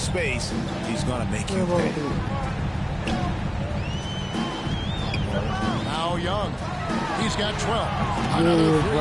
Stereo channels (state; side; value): identical; both; correlation 1.00